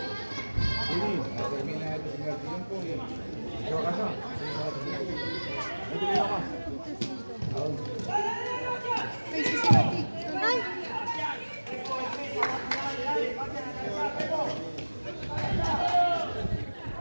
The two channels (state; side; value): inverted; both; correlation -1.00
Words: Termina el primer tiempo y llevo a casa. No te digo más. ¿A dónde? Ay.